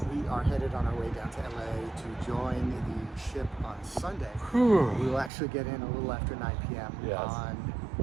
We are headed on our way down to LA to join the ship on Sunday. Whew. We will actually get in a little after 9 p.m. Yes. on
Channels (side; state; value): left; drops out; at 5.3 s